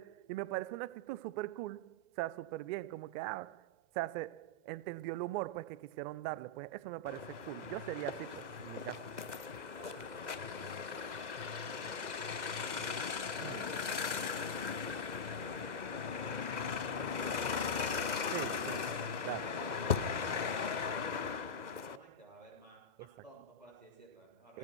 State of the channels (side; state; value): left; late; 2.0 ms